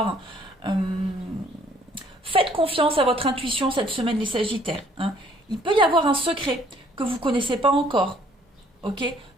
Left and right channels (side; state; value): both; normal; correlation 0.61